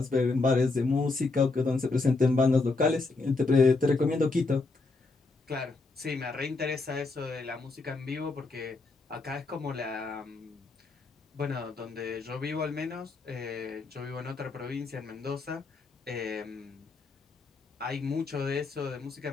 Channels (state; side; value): quieter; right; 3.7 dB